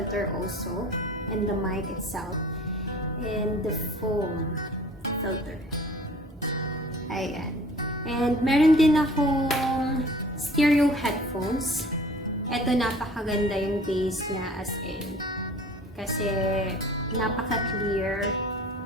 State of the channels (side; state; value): both; normal; correlation 0.48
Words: also. And the mic itself. And the foam filter. Ayan. And meron din akong stereo headphones. Eto, napakaganda yung bass niya as in. Kasi napaka-clear